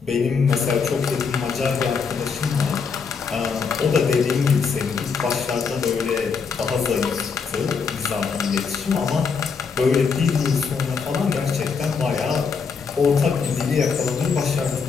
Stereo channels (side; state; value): right; quieter; 5.5 dB